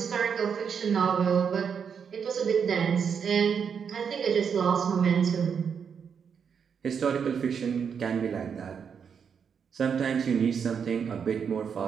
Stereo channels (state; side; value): quieter; left; 6.9 dB